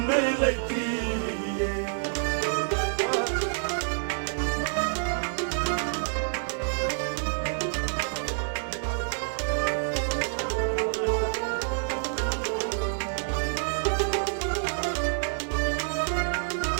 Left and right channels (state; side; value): silent; left; digital silence